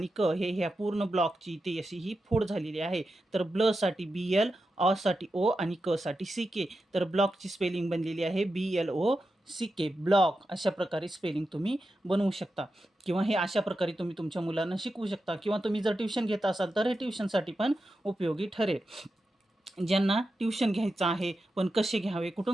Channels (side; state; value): both; normal; correlation 0.90